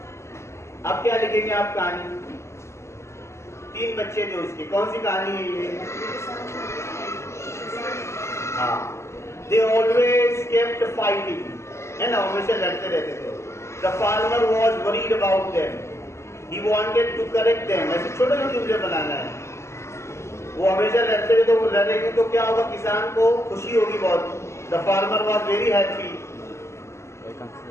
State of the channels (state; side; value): late; right; 0.13 ms